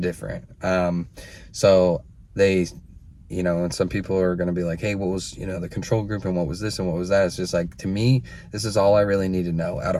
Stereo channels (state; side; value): identical; both; correlation 1.00